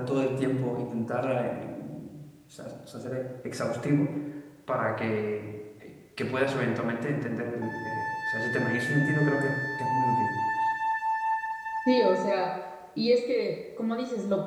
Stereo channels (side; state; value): both; identical; correlation 1.00